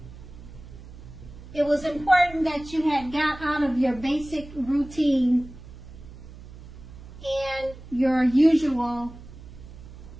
it was important that you had got out of your basic routine and your usual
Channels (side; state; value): right; noise; hum, 16 dB below the sound